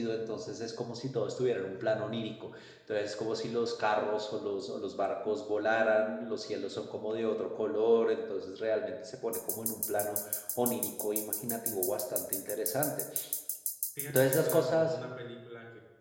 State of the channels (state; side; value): identical; both; correlation 1.00